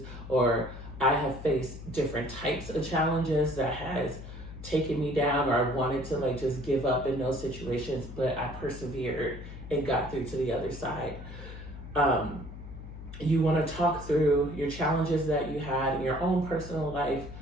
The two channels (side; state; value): left; noise; hum, 12 dB below the sound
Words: or I have faced different types of challenges that has taken me down, or I wanted to like just give up in those situations, but I persevered and got through to the other side. You want to talk through your challenges that you had in your own personal life,